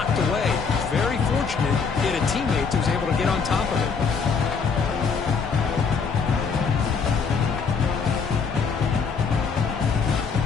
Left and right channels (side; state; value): right; quieter; 5.5 dB